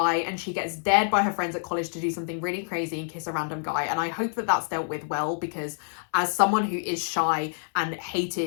and she gets dared by her friends at college to do something really crazy and kiss a random guy. And I hope that that's dealt with well, because as someone who is shy and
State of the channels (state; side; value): silent; right; 60 dB below the other